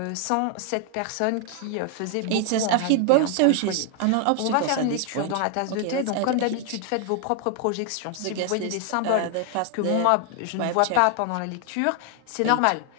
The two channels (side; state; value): both; different; correlation 0.01